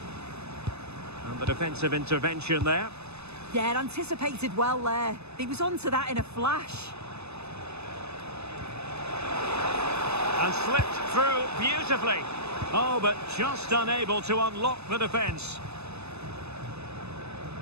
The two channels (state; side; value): late; left; 0.80 ms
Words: And the defensive intervention there. Yeah, anticipated well there. He was onto that in a flash. And slipped through beautifully. Oh, but just unable to unlock the defence.